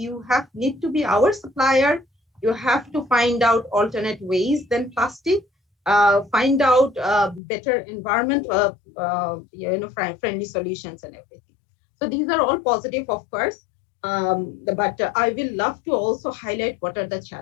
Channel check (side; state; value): right; drops out; at 7.4 s